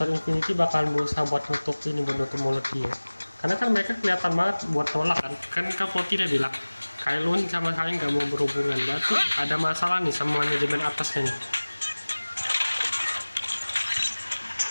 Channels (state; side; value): inverted; both; correlation -1.00